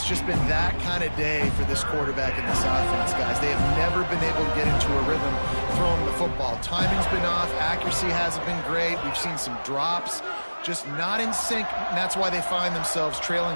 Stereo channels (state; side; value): inverted; both; correlation -1.00